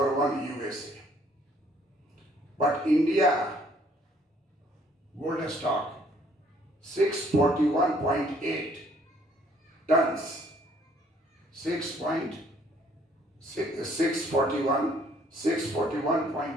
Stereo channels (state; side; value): normal; both; correlation 0.63